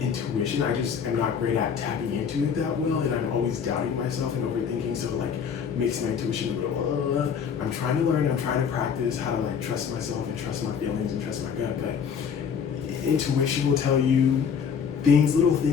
intuition. I just am not great at tapping into it that well, and I'm always doubting myself and overthinking, so, like, makes my intuition a little, I'm trying to learn, I'm trying to practice how to, like, trust myself and trust my feelings and trust my gut, but intuition will tell you little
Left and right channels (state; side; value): quieter; right; 6.9 dB